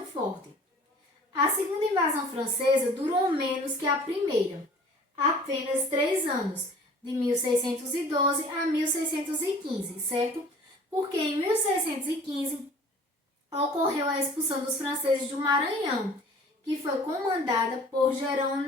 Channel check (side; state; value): both; normal; correlation 0.48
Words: forte. A segunda invasão francesa durou menos que a primeira, apenas 3 anos, de 1612 a 1615, certo? Porque em 1615 ocorreu a expulsão dos franceses do Maranhão, que foi comandada por